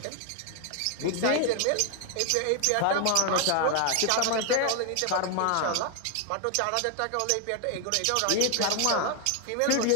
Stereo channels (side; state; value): both; different; correlation 0.01